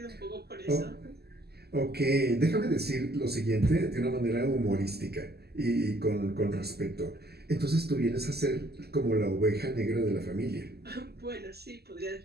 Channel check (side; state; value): left; late; 0.46 ms